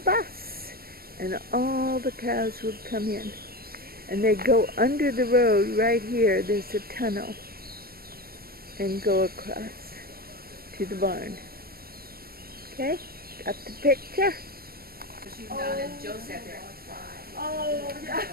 and all the cows would come in. And they'd go under the road right here. There's a tunnel. And go across to the barn. Okay? Got the picture? She was down and Joe sat there and cried. Oh, yeah.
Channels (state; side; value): late; left; 0.44 ms